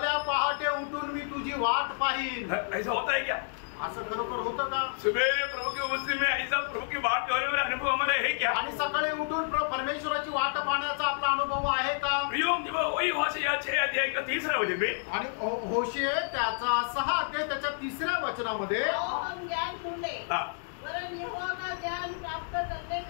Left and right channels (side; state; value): right; silent; digital silence